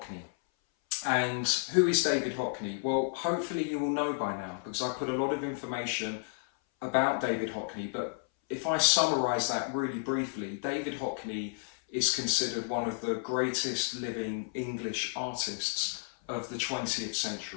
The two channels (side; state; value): right; silent; 57 dB below the other